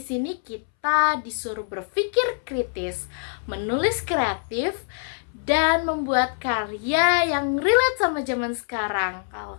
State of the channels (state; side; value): silent; right; 62 dB below the other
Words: kita disuruh berpikir kritis, menulis kreatif, dan membuat karya yang relate sama zaman sekarang. Kalau